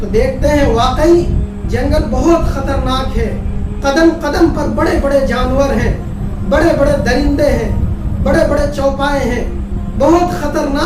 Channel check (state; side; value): identical; both; correlation 1.00